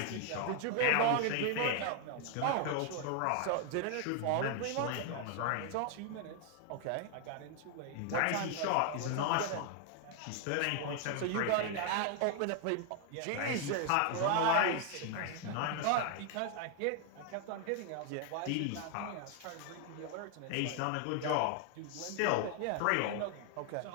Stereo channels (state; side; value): different; both; correlation 0.00